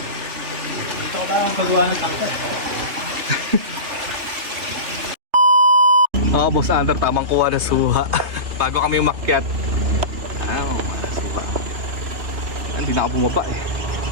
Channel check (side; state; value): left; late; 3.4 ms